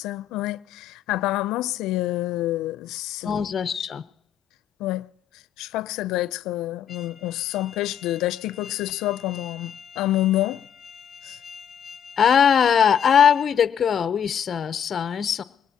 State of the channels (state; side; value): quieter; right; 8.8 dB